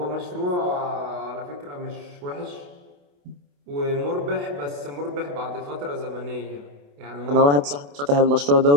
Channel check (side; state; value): left; late; 28 ms